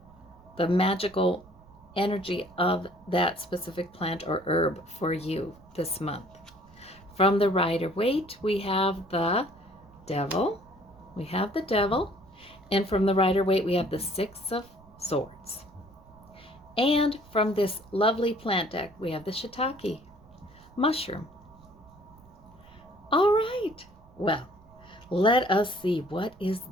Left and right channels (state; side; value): noise; right; rumble, 25 dB below the sound